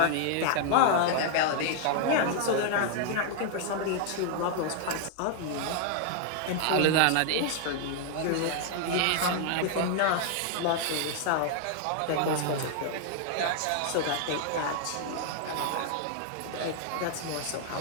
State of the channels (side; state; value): both; different; correlation 0.00